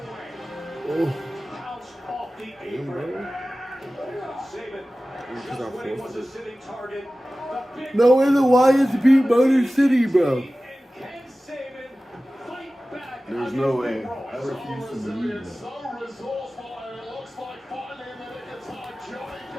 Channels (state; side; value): normal; both; correlation 0.96